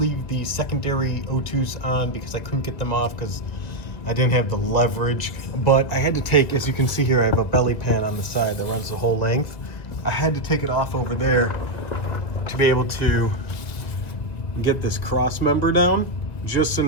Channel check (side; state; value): right; late; 1.9 ms